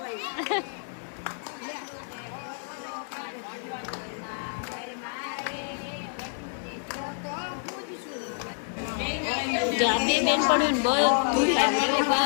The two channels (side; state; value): right; silent; digital silence